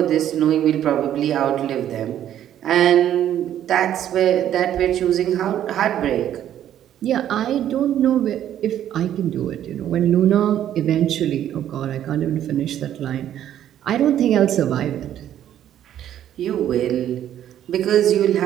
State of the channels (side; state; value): left; quieter; 11.1 dB